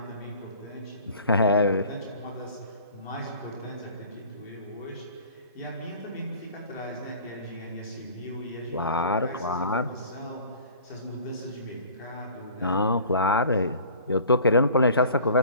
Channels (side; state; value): both; inverted; correlation -0.47